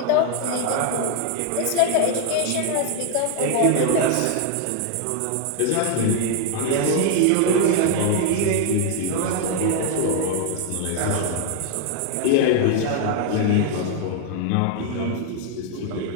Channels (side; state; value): both; different; correlation 0.00